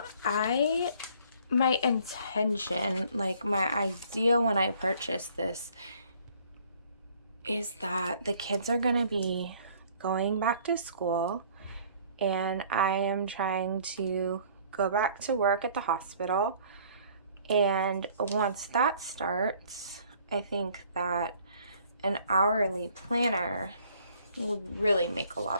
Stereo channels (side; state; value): both; inverted; correlation -0.58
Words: My intention, like my idea when I purchased this, is that the kids are going to be going back to school, and I am trying to go back to work at the hospital. And once that starts, I think that an hourly planner would really make a